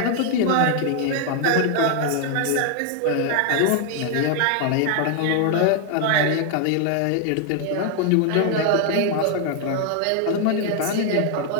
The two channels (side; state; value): both; different; correlation 0.00